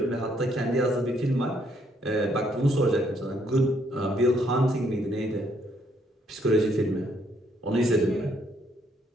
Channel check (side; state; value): both; normal; correlation 0.70